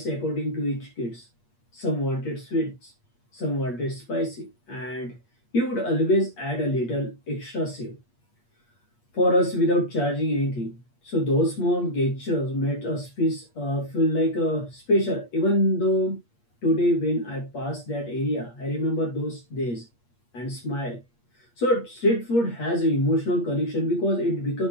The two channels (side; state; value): right; late; 8.5 ms